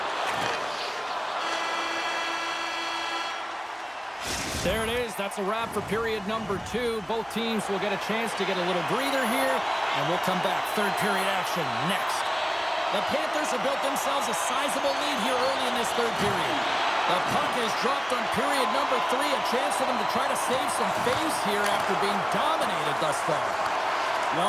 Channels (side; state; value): both; identical; correlation 1.00